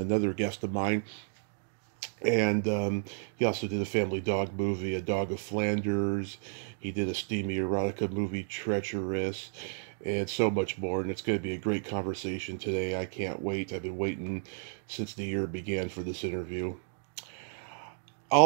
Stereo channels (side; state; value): left; silent; 57 dB below the other